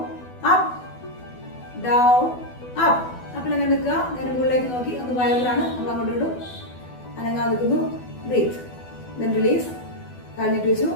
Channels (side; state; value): right; late; 12 ms